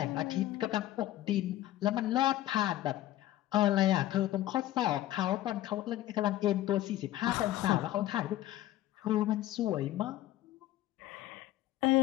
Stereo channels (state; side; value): quieter; right; 14.3 dB